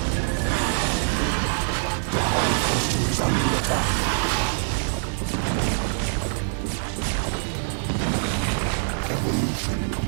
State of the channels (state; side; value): silent; left; 62 dB below the other